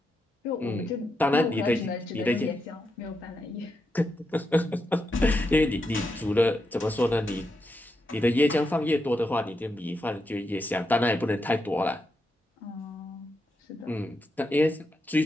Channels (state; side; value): normal; both; correlation 0.84